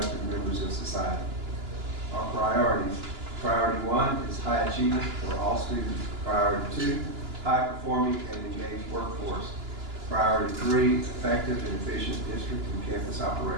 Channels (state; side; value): late; left; 2.9 ms